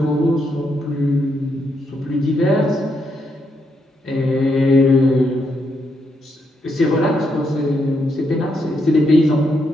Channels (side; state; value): both; normal; correlation 0.79